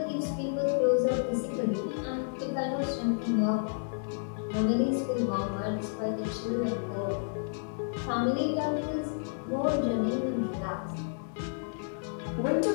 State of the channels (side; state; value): right; silent; digital silence